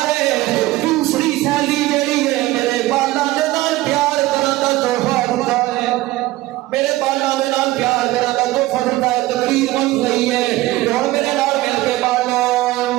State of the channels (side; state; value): left; quieter; 17.9 dB